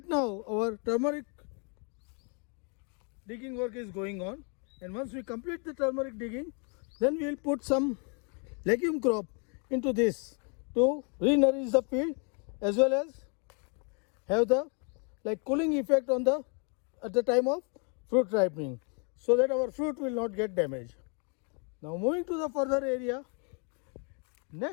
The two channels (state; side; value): quieter; right; 37.8 dB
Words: now our turmeric digging work is going on, and once we complete the turmeric digging, then we will put some legume crop into this to re-nourish the field, as well as have the cooling effect on at the time of fruit ripening, so that our fruit will not get damaged. Now moving to the further area,